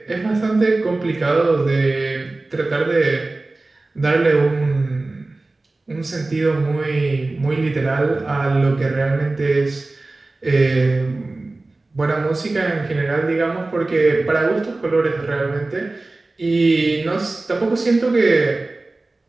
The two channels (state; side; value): quieter; left; 3.1 dB